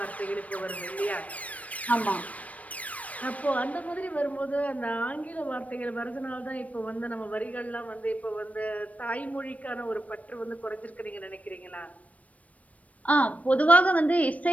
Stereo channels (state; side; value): late; right; 0.068 ms